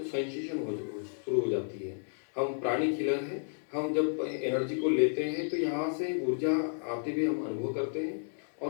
सेंसेशन शुरू हो जाती है। हम प्राणी किलर हैं, हम जब एनर्जी को लेते हैं तो यहाँ से ऊर्जा आते हुए हम अनुभव करते हैं,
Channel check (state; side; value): silent; right; digital silence